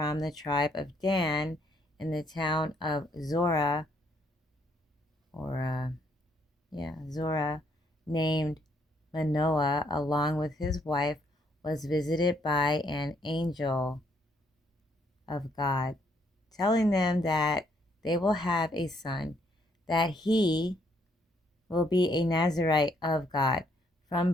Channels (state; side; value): normal; both; correlation 0.70